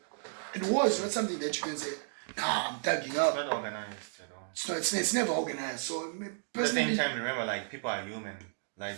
in war, it's not something that you can say, nah, I'm thugging up. It's not organized at all. It's never organized. So, at the same time, remember, like, people are human. Like,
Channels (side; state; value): left; silent; digital silence